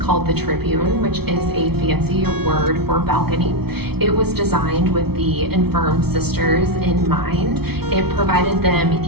the tribune, which is a fancy word for balcony. It was designed with the infirm sisters in mind. It provided them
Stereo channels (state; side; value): late; left; 0.96 ms